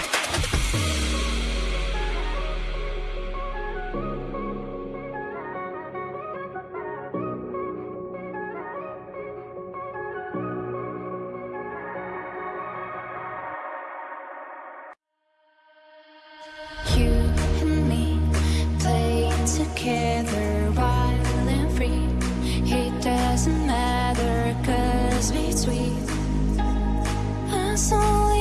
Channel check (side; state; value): both; identical; correlation 1.00